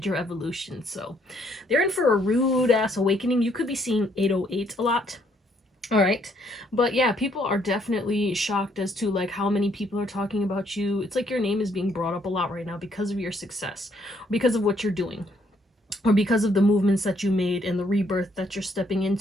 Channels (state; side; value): normal; both; correlation 0.69